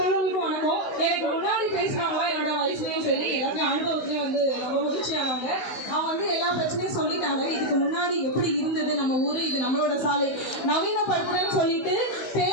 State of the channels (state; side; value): late; right; 16 ms